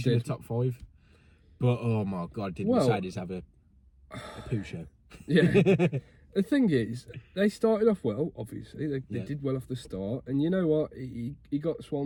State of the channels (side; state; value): both; identical; correlation 1.00